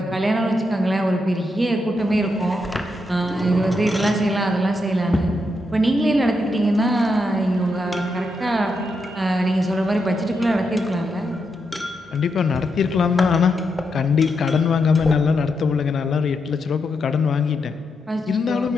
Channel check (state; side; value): normal; both; correlation 0.83